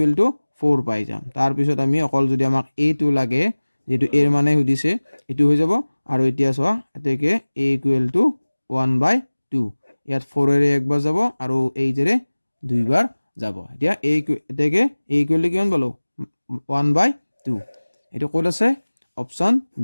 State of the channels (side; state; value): both; inverted; correlation -1.00